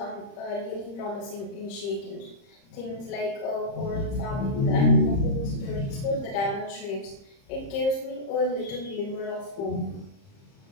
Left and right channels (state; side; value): late; right; 30 ms